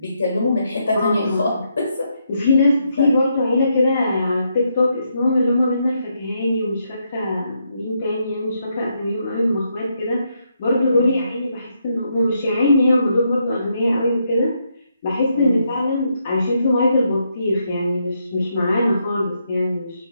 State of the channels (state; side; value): inverted; both; correlation -0.79